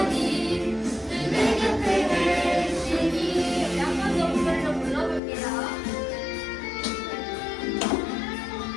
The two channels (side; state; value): right; drops out; at 5.2 s